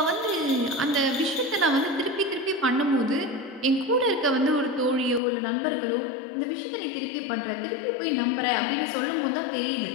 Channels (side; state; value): right; drops out; at 5.2 s